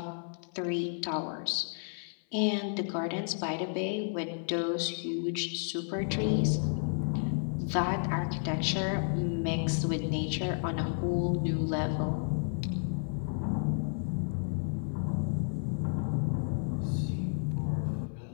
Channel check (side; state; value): right; silent; 56 dB below the other